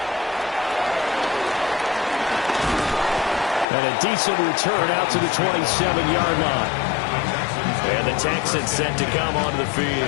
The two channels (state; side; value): drops out; right; at 3.7 s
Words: And a decent return out to the 27-yard line. And the Texans set to come onto the